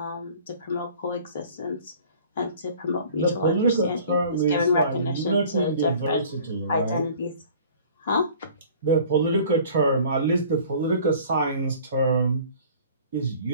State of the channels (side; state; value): both; inverted; correlation -0.49